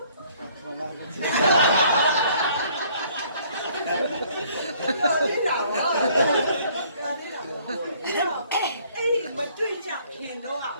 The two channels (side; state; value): both; inverted; correlation -0.60